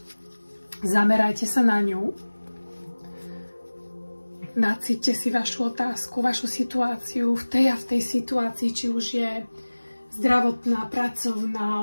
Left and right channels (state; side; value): inverted; both; correlation -1.00